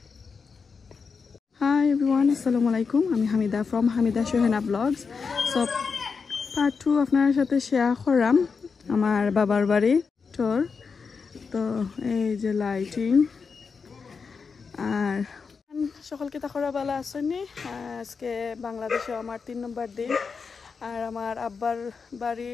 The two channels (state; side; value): quieter; right; 5.3 dB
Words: হাই এভরিওয়ান, আসসালামু আলাইকুম। আমি Hamida from Hamida Shuhena blogs. So part 2 আপনার সাথে শেয়ার করাম আমার বাবার বাড়ি ট্যুর। তো এই যে লাইটিং আর সকলকে তাকরা বেলা আসেনি। আজকে বাংলাদেশে আমার 3 নম্বর দিন। আর আমার আব্বার বাড়ি